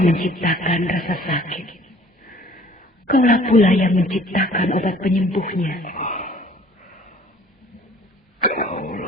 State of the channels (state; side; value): normal; both; correlation 0.53